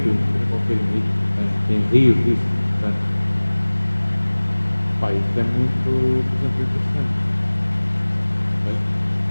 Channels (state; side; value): inverted; both; correlation -1.00